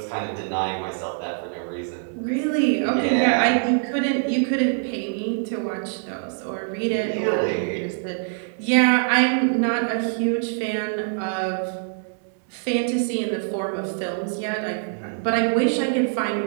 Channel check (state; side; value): silent; left; 63 dB below the other